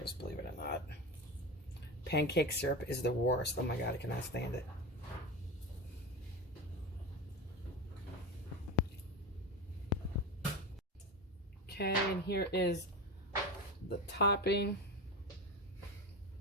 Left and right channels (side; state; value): both; normal; correlation 0.22